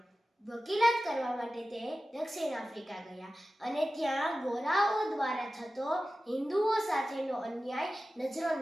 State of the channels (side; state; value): both; normal; correlation 0.95